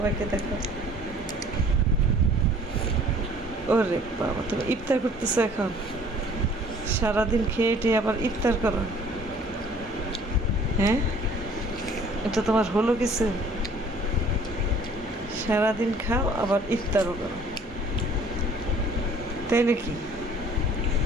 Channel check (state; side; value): normal; both; correlation 0.54